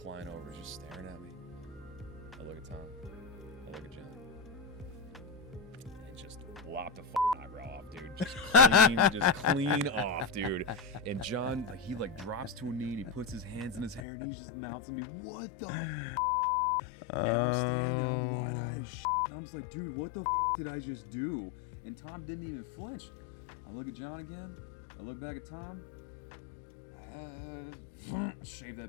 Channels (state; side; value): drops out; right; at 14.0 s